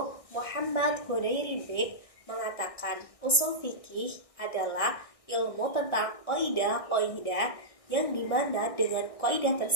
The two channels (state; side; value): late; right; 1.6 ms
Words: Muhammad Hudairibik mengatakan usul fikih adalah ilmu tentang qaidah-qaidah yang dimana dengan qaidah